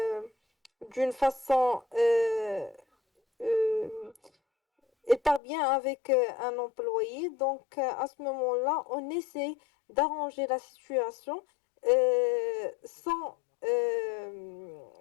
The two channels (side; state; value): right; drops out; at 5.4 s